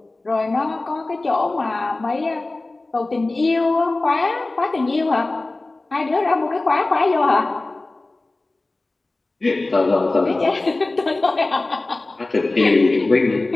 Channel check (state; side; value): quieter; right; 3.1 dB